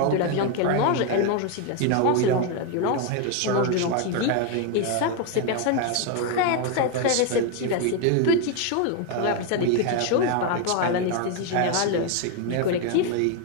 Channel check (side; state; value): both; different; correlation 0.01